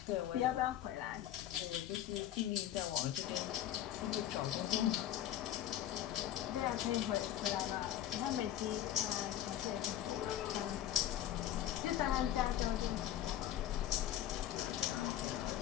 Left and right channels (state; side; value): quieter; right; 12.0 dB